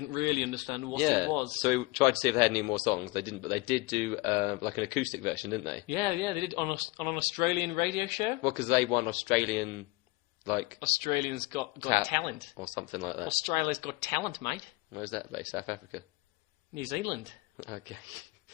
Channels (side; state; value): right; quieter; 22.7 dB